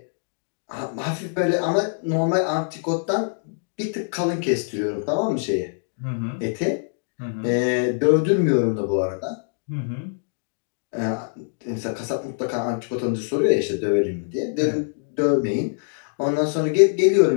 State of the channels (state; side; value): silent; right; digital silence